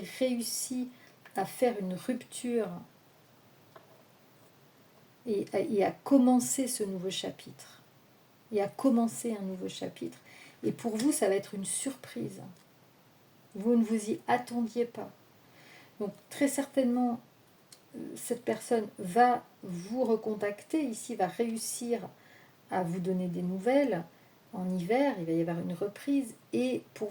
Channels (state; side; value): identical; both; correlation 1.00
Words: réussit à faire une rupture et à commencer ce nouveau chapitre. Et à commencer un nouveau chapitre. Et pour vous, ça va être une surprise. Vous ne vous y attendiez pas. Donc très certainement, cette personne va vous recontacter, ici va réussir à vous donner des nouvelles. En hiver, il va y avoir une reprise, et pour